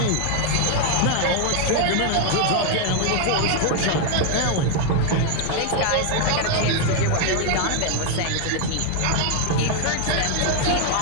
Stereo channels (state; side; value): different; both; correlation 0.00